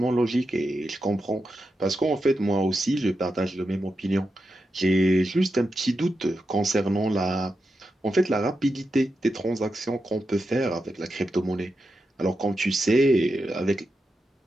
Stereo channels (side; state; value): both; normal; correlation 0.88